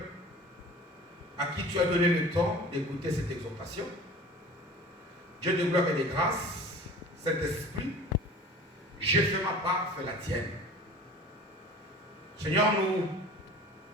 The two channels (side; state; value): both; normal; correlation 0.41